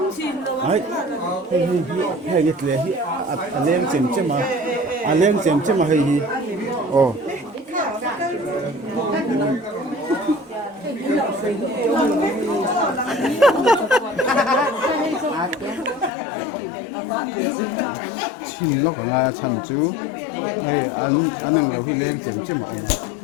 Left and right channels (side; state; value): right; drops out; at 16.1 s